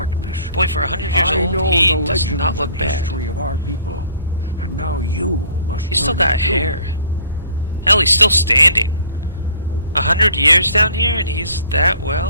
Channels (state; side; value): inverted; both; correlation -0.54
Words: Boy, for 100 years I old, know he the does legends not look and bad. history of our people, and now you must. He's still learn got it too. hair. Hell, he's still standing. 100 years down here, and he's that